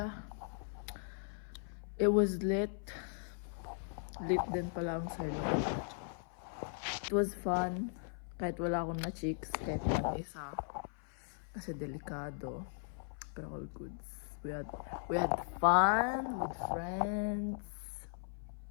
it was lit. Lit din pala ang Silo. It was fun. Kahit wala akong na chicks, kahit lang isa. Kasi delikado. Pero all goods. We had fun with friends.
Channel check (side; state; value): right; silent; 52 dB below the other